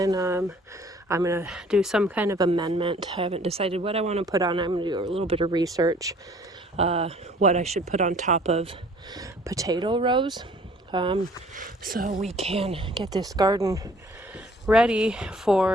I'm going to do some kind of amendment. I haven't decided what I want to put on. I'm going to do a little bit of research, what I should put on top of potato rows, so we can get this garden ready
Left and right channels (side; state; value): both; normal; correlation 0.55